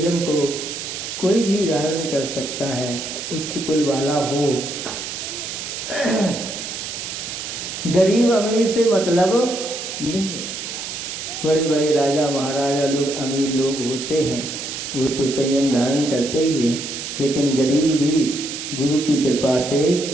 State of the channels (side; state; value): right; noise; hiss, 7 dB below the sound